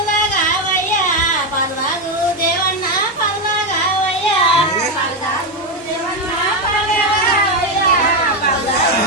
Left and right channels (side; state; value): both; normal; correlation 0.08